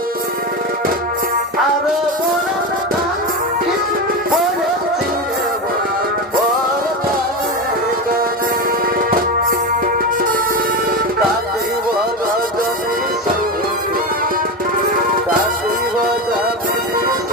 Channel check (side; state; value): both; normal; correlation 0.19